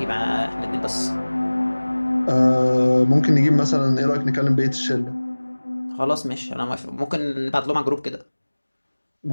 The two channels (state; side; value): inverted; both; correlation -1.00